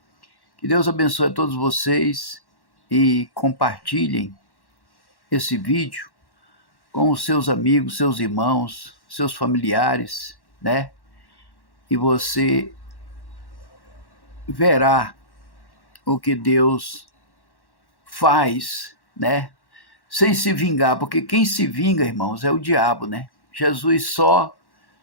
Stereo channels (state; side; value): late; right; 1.1 ms